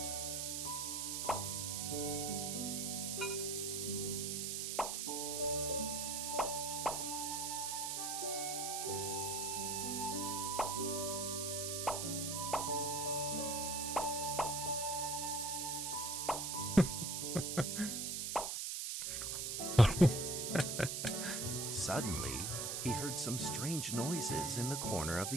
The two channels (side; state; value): right; noise; hiss, 1 dB below the sound